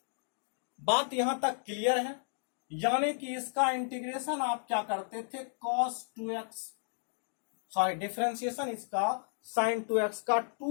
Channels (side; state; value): right; silent; digital silence